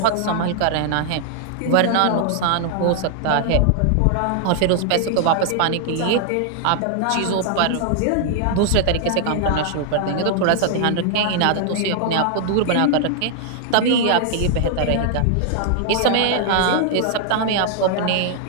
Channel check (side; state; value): both; different; correlation -0.01